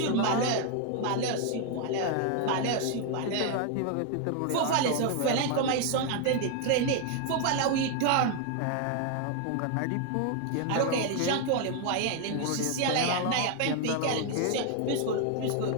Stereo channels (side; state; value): both; different; correlation 0.00